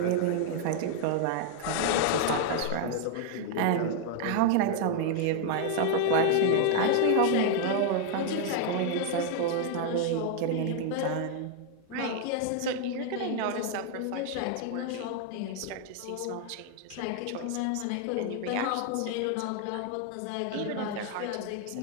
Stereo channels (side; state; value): both; different; correlation 0.00